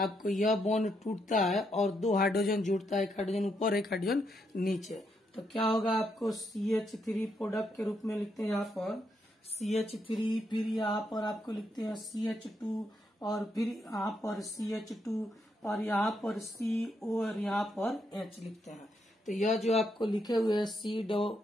यह बॉन्ड टूटता है और 2 हाइड्रोजन जुड़ता है, एक हाइड्रोजन ऊपर एक हाइड्रोजन नीचे। तो क्या होगा, आपको CH3 प्रोडक्ट के रूप में लिखते हैं यहाँ पर CH3, फिर यहाँ पर आपको लिखते हैं CH2 और फिर यहाँ पर CH2 और यहाँ पर CO और यहाँ पर H लिखते हैं। तो यह जो आपको लिखे हुए है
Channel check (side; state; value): both; normal; correlation 0.78